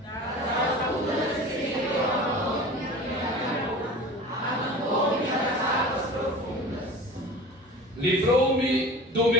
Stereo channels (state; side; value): normal; both; correlation 0.38